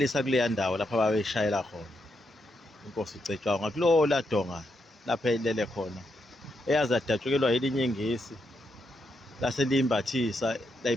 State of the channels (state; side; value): normal; both; correlation 0.81